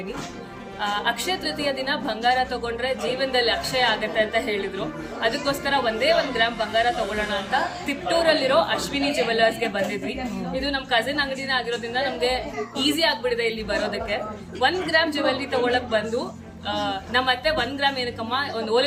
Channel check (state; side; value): identical; both; correlation 1.00